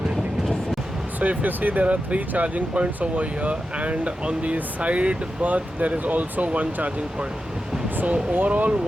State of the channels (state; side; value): normal; both; correlation 0.90